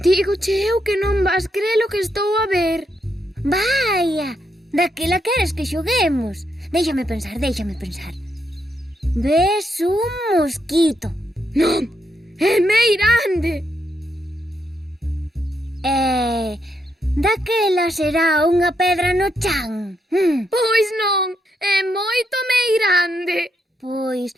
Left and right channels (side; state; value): both; normal; correlation 0.79